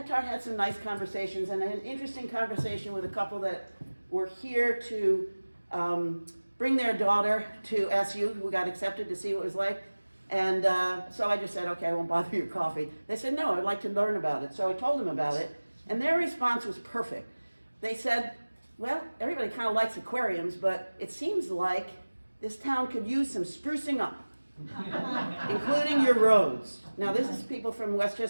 had some nice conversations, and I had an interesting conversation with a couple that were here to bring their daughter to SU, who got accepted to see what it was like. And so I just said, okay, I won't bother your coffee. They said, no, I'd like to learn about it. So I told them about it, and their response was perfect. They said, well, everybody kind of likes aquariums, but it seems like this town could use some sprucing up, including your roads. Now, this is people from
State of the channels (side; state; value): both; inverted; correlation -1.00